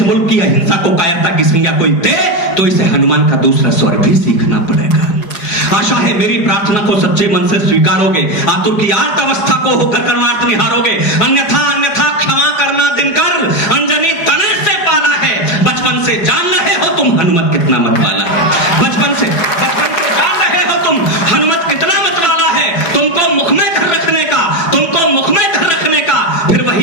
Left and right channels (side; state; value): right; late; 4.8 ms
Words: मुल्क की अहिंसा को कायरता की संज्ञा कोई दे तो इसे हनुमान का दूसरा स्वर भी सीखना पड़ेगा। आशा है मेरी प्रार्थना को सच्चे मन से स्वीकारोगे, आतुर की आर्त अवस्था को होकर कर्मार्थ निहारोगे। अन्यथा क्षमा करना दिनकर, अंजनी तने से पाला है। बचपन से जान रहे हो तुम हनुमत कितना मत वाला है। बचपन से जान रहे हो तुम हनुमत कितना मत वाला है। तुमको मुख में धर रखने का, तुमको मुख में धर रखने का फिर